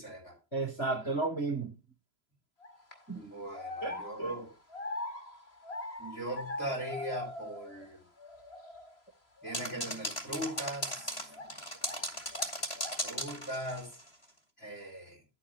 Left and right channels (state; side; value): late; right; 3.0 ms